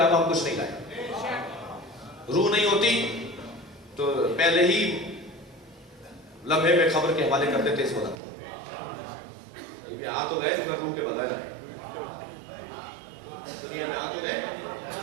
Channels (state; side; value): drops out; left; at 8.2 s